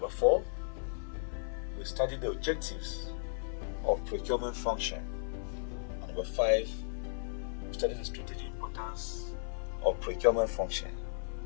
4, we study the objectives of procurement function. And number 5, we study the strategic importance of procurement function.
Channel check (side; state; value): right; silent; digital silence